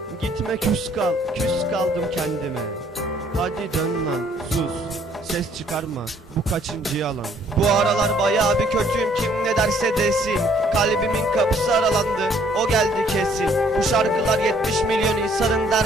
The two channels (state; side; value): normal; both; correlation 0.63